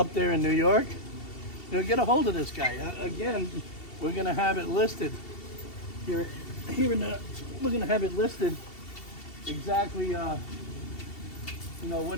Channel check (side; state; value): right; late; 2.7 ms